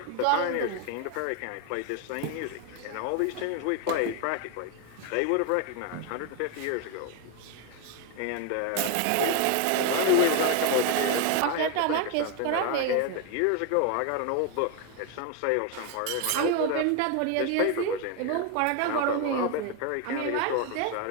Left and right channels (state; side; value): different; both; correlation 0.01